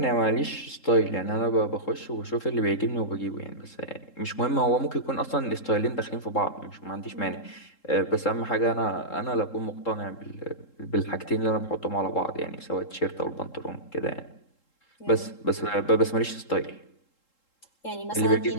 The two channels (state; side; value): late; right; 3.7 ms